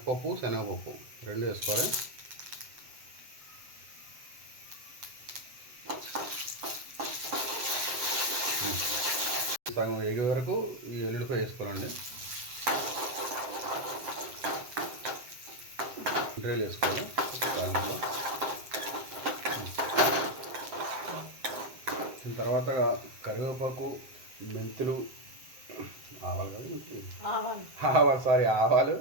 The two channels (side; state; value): left; late; 7.6 ms